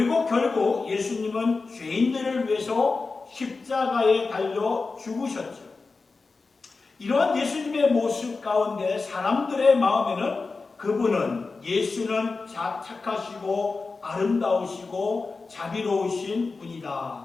결국 예수님은 죄인들을 위해서 십자가에 달려 죽으셨죠. 이러한 예수님의 모습 가운데 사람들의 마음에는 그분은, 예수는 착하시고 아름다우시고 자비로우신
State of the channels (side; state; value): right; quieter; 4.1 dB